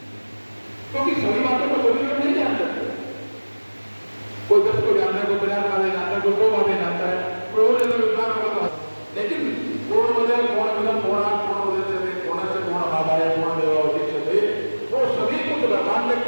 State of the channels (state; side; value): inverted; both; correlation -1.00